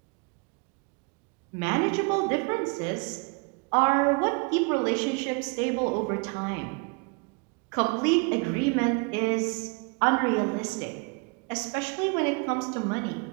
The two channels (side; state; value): left; quieter; 33.1 dB